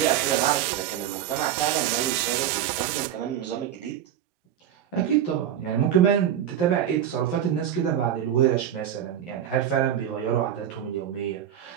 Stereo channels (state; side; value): quieter; left; 10.3 dB